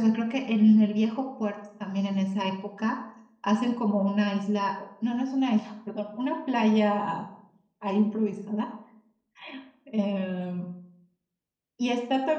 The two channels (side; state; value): both; identical; correlation 1.00